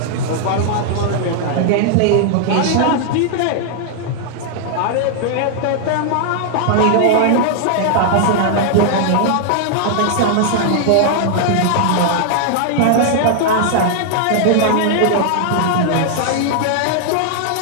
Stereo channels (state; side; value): different; both; correlation -0.01